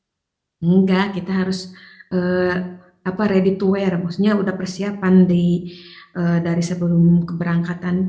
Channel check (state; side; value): identical; both; correlation 1.00